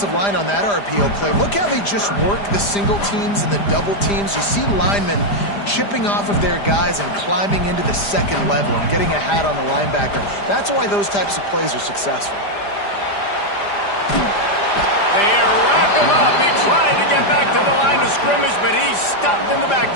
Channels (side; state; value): right; late; 5.0 ms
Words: line on that RPO play. Look how they just work the single teams and the double teams. You see linemen chipping off of their guys and climbing into the second level and getting a hat on the linebacker. That's why those types of plays are successful. They wrap him up. He tried to get back to the line of scrimmage, but he's stopped in the